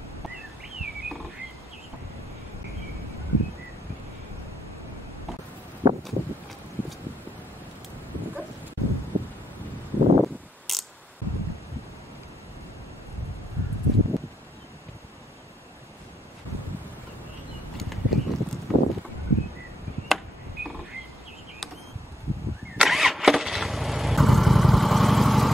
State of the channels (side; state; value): both; normal; correlation 0.79